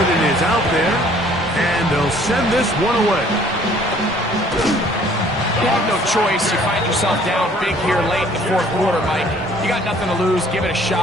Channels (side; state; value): both; normal; correlation 0.57